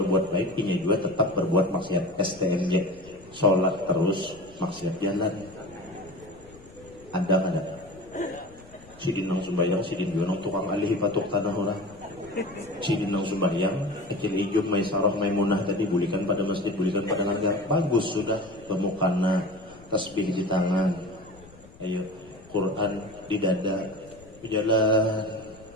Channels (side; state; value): left; noise; rumble, 22 dB below the sound